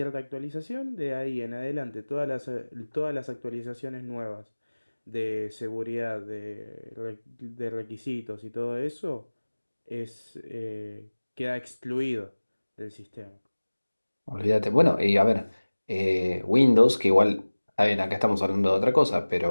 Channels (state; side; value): inverted; both; correlation -1.00